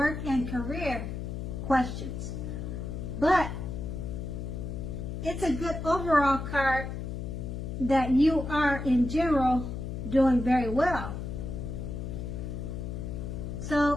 and career questions. But it's a good overall card that you are, in general, doing very well.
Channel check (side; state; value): left; noise; hum, 5 dB below the sound